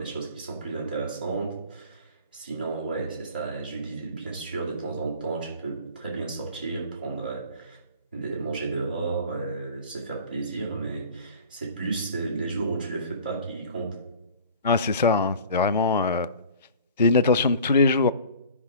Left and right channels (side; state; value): both; inverted; correlation -0.44